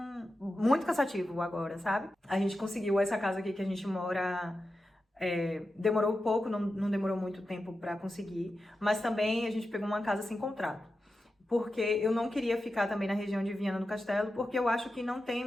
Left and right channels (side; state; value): both; normal; correlation 0.91